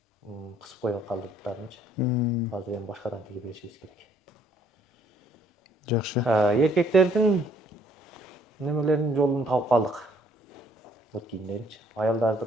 Кысып коюп калды буттарынчы. Азыр эми башкадан тигип беришибиз керек. Жакшы. Эркектердин немелеринин жолун таап калдык. Бут кийимдеринчи.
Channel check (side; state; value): both; normal; correlation 0.63